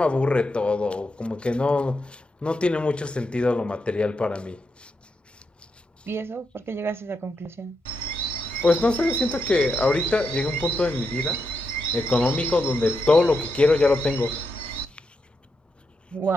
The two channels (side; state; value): both; normal; correlation 0.84